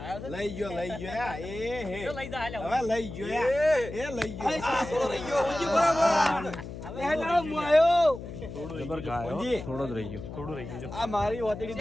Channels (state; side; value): noise; left; hum, 10 dB below the sound